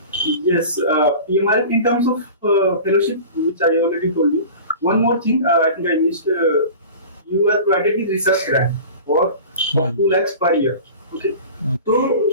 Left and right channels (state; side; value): inverted; both; correlation -0.37